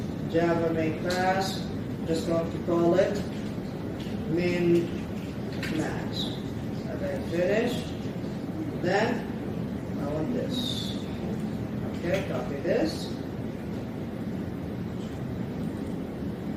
Java main class, just going to call it min max. Okay, finish. Then I want this. Okay, copy this.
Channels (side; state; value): both; identical; correlation 1.00